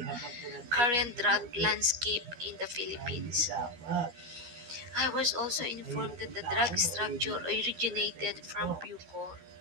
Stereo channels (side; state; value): left; late; 13 ms